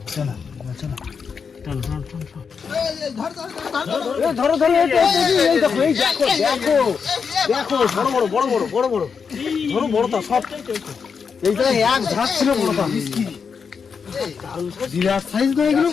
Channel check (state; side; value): quieter; right; 6.0 dB